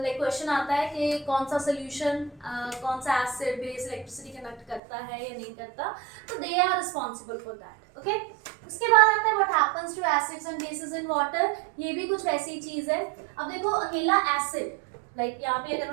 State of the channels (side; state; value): left; drops out; at 4.8 s